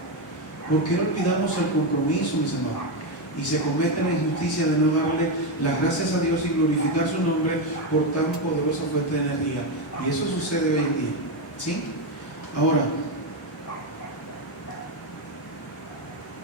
¿Por qué olvidamos el compromiso, mis amados? Y se comete la injusticia de no darle las gracias a Dios y glorificar su nombre por tan poderosa fuente de energía. Y eso sucede hoy en día, ¿sí? Ahora,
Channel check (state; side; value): normal; both; correlation 0.08